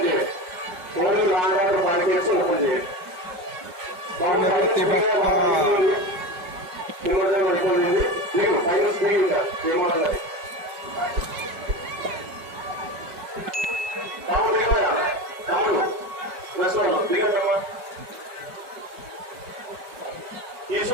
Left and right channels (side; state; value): left; late; 5.0 ms